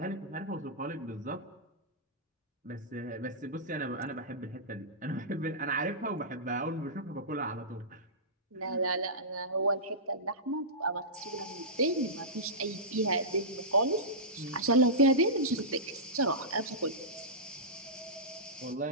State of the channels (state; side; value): normal; both; correlation -0.17